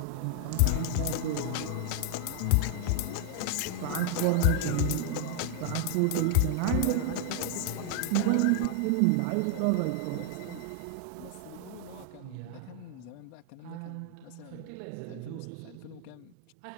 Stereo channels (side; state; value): both; different; correlation 0.00